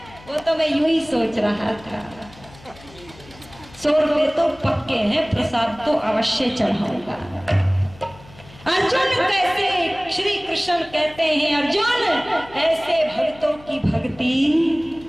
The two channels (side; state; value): left; noise; hum, 22 dB below the sound